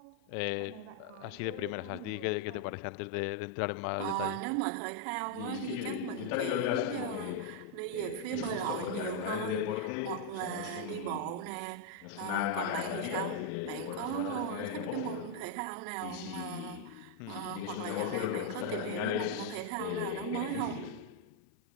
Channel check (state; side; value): different; both; correlation 0.00